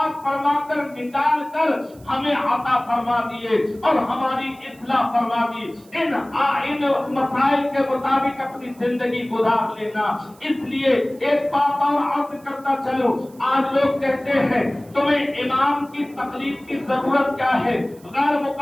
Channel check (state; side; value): noise; right; hiss, 27 dB below the sound